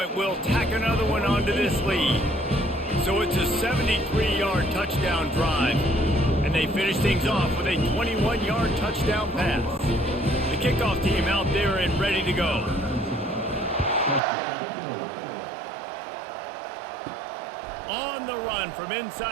will tack another one onto this lead. So it's a 73-yard touchdown drive. And they finish things off with a 21-yard touchdown pass. The kickoff team out there and ready to go. On the run from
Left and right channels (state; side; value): drops out; left; at 14.2 s